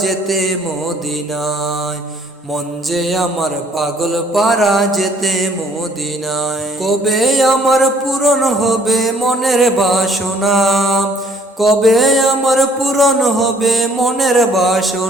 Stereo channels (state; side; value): normal; both; correlation 0.60